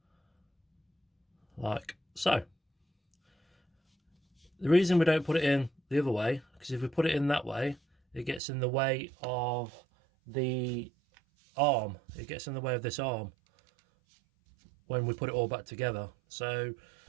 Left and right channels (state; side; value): drops out; left; at 8.4 s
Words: like so. The reason we don't put it in the other way, because if we put it in that way, it gets in the way of the arm. It gets in the way of this arm when we put it all back together, so